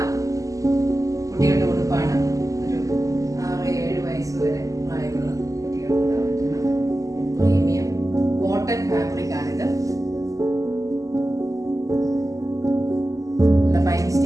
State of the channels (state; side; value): late; left; 0.16 ms